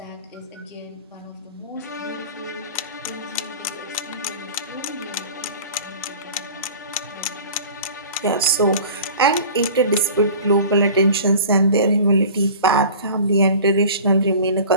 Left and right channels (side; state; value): both; inverted; correlation -0.41